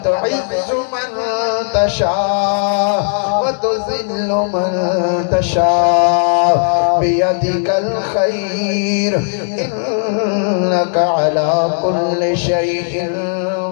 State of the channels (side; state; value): right; silent; digital silence